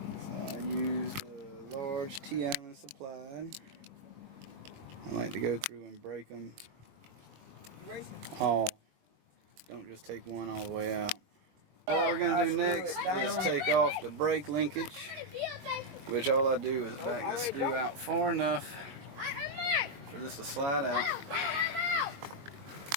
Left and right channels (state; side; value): late; left; 22 ms